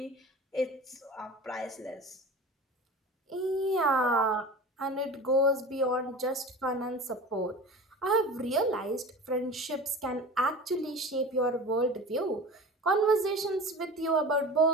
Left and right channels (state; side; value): normal; both; correlation 0.35